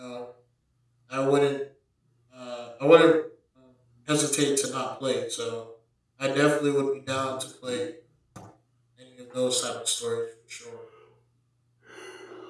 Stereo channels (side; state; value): both; identical; correlation 1.00